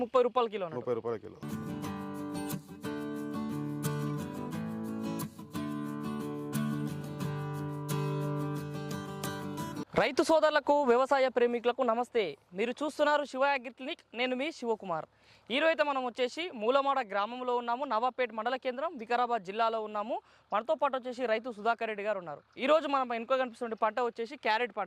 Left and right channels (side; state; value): both; identical; correlation 1.00